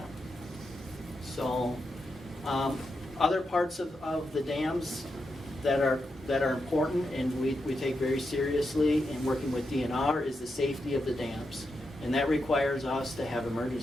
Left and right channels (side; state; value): both; normal; correlation 0.86